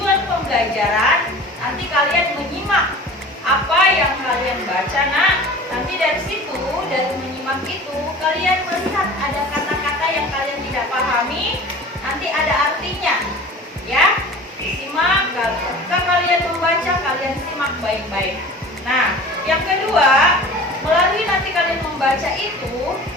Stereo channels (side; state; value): both; normal; correlation 0.40